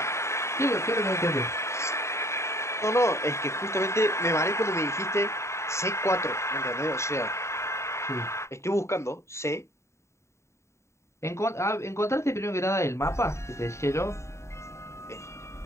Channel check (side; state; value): right; late; 0.14 ms